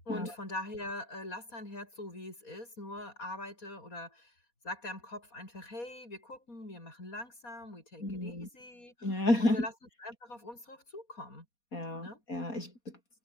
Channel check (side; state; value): right; late; 4.2 ms